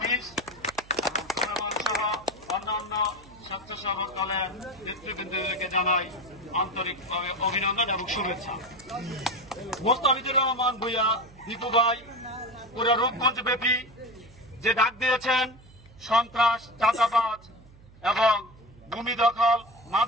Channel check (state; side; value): noise; right; hum, 23 dB below the sound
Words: এবং সুলেমান সহ অন্যান্য স্বেচ্ছাসেবক দলের নেতৃবৃন্দকে জানাই আন্তরিকভাবে অভিনন্দন এবং শুভেচ্ছা। মোস্তাফিজুর রহমান ভূঁইয়া দীপু ভাই পুরো রূপগঞ্জ ব্যাপী যে ডাক দিয়েছেন সন্ত্রাস, চাঁদাবাজ এবং ভূমি দখল,